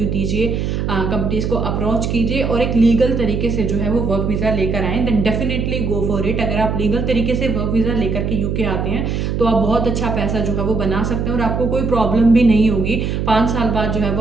दीजिए, कंपनीज को अप्रोच कीजिए और एक लीगल तरीके से जो है वो वर्क वीज़ा लेकर आएँ, then definitely go for it. अगर आप लीगल तरीके से वर्क वीज़ा लेकर के यूके आते हैं तो आप बहुत अच्छा पैसा जो है वो बना सकते हैं और आपको कोई प्रॉब्लम भी नहीं होगी। 5 साल बाद जो है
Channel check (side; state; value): right; noise; hum, 1 dB below the sound